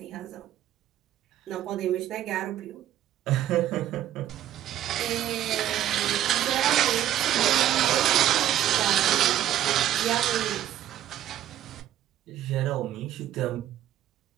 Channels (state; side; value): quieter; left; 12.0 dB